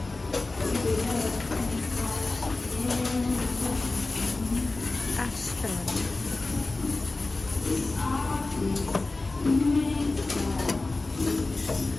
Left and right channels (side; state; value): right; quieter; 3.3 dB